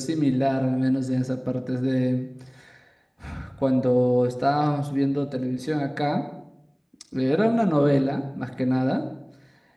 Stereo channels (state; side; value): identical; both; correlation 1.00